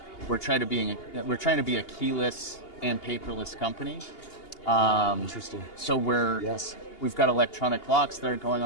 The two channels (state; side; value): late; right; 2.8 ms